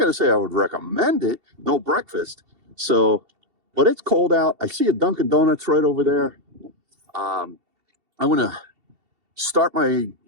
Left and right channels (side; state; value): left; late; 2.7 ms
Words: say I would recommend it. No breakfast, but it's cold out. I see a Dunkin' Donuts right over there. I'm gonna start my